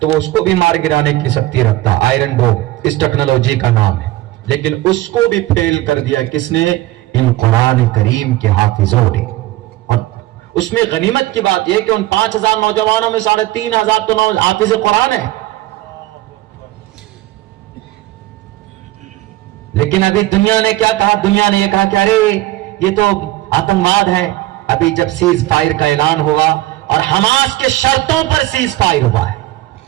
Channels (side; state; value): left; quieter; 16.9 dB